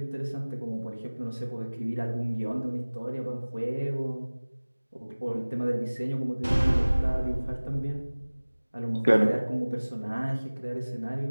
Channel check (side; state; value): both; inverted; correlation -1.00